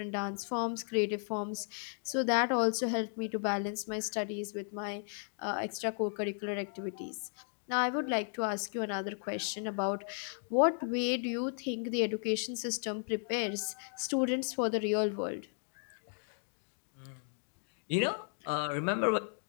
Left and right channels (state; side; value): silent; right; 54 dB below the other